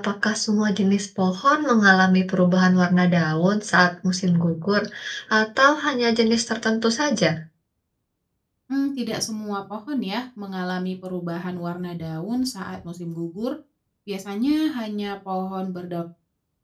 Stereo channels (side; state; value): both; identical; correlation 1.00